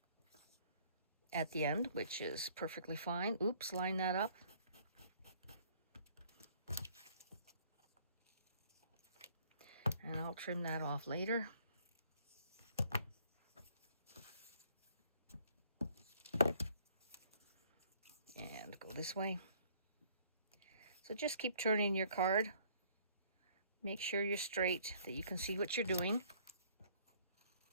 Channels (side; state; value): both; inverted; correlation -0.60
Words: at the end, which is perfectly fine. Oops, line that up. And I'll trim that off later. And go this way. So just keep turning your card. Make sure you're straight, that you can see what you're doing.